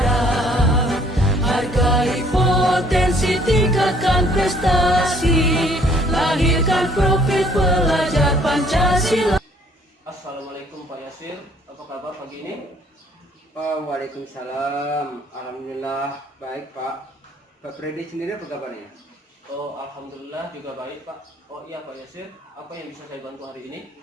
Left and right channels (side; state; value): both; normal; correlation 0.60